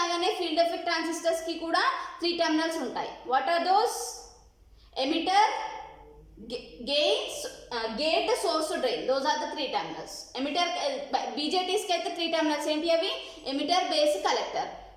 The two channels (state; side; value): identical; both; correlation 1.00